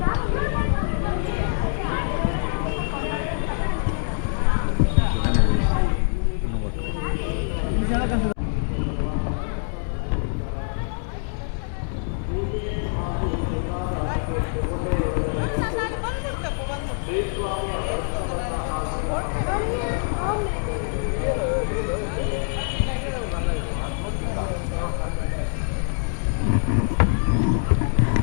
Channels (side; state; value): right; silent; 58 dB below the other